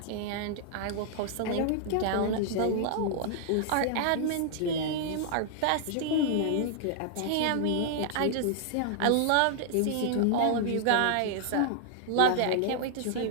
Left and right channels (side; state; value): both; different; correlation -0.01